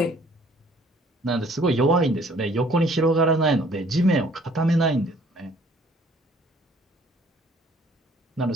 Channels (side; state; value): both; normal; correlation 0.57